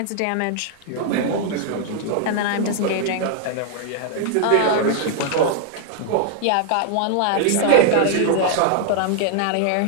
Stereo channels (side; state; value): both; different; correlation 0.00